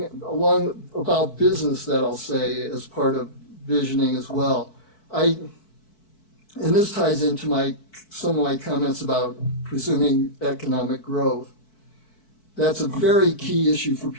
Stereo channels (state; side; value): late; right; 4.6 ms